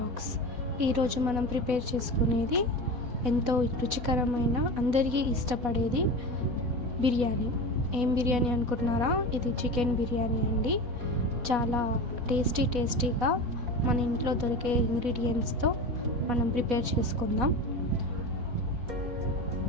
ఈరోజు మనం prepare చేసుకునేది ఎంతో రుచికరమైన అందరికీ ఇష్టపడేది బిర్యానీ. ఏం బిర్యానీ అనుకుంటున్నారా? ఇది చికెన్ బిర్యానీ అండి. చాలా టేస్టీగా మన ఇంట్లో దొరికే ఇంగ్రీడియంట్స్తో మనం ప్రిపేర్ చేసుకుందాం.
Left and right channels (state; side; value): late; left; 4.1 ms